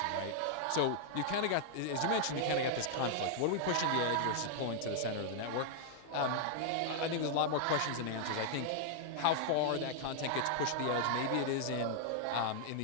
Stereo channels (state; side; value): different; both; correlation -0.01